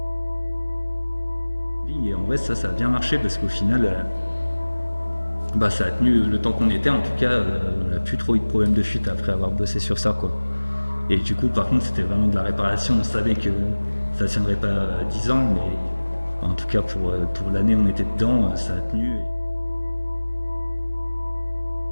Et en vrai, ça a bien marché parce qu'au final, ça a tenu le temps qu'on était. En tout cas, on n'a plus trop eu de problème de fuite après avoir bossé sur ça, quoi. Et du coup, par contre, c'était vraiment de la réparation. On savait que ça ne tiendrait pas 10 ans, mais en tout cas, pour l'année où on était dedans, ça a tenu.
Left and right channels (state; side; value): inverted; both; correlation -1.00